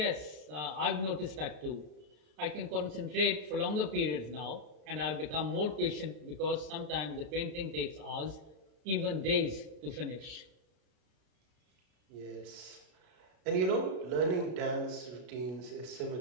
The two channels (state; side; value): late; left; 32 ms